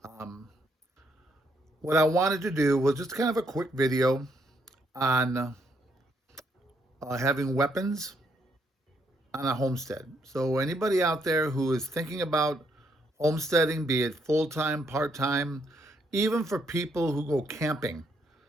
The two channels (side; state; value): both; normal; correlation 0.73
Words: Um, what I wanted to do was just kind of a quick video on having weapons on a homestead. So anybody out there who is thinking about homesteading, be it full-time, part-time, even for people who go camping,